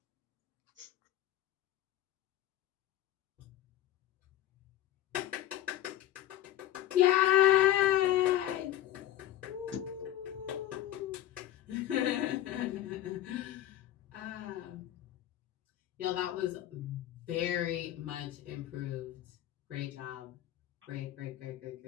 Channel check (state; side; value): quieter; right; 13.2 dB